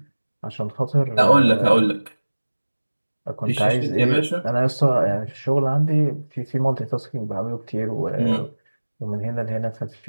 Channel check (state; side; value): inverted; both; correlation -1.00